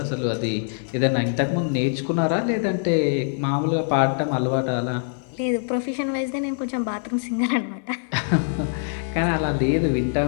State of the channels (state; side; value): silent; right; 63 dB below the other